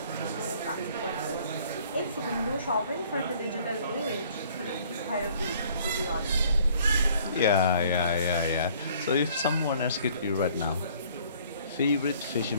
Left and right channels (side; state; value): both; inverted; correlation -0.57